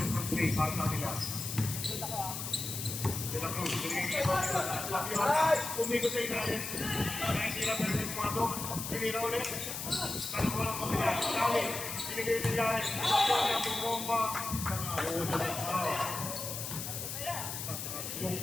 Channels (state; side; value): noise; left; hiss, 5 dB below the sound